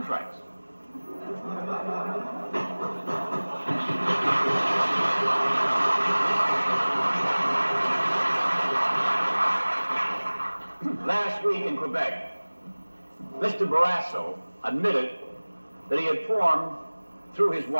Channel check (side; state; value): both; inverted; correlation -1.00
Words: Last week in Quebec, Mr. Barrasso admitted that he had formed, through his